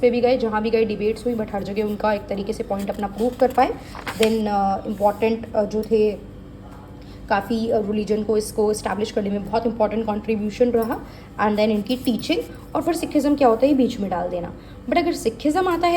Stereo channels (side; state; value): both; identical; correlation 1.00